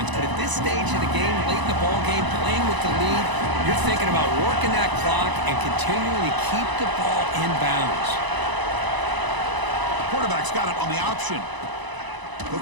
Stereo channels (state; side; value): late; left; 1.0 ms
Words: but at this stage of the game, late in the ball game, playing with the lead, you're thinking about working that clock and continuing to keep the ball in bounds. The quarterback's got it on the option.